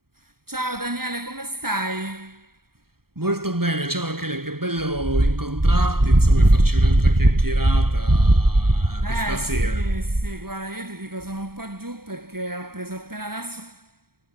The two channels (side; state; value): left; late; 0.94 ms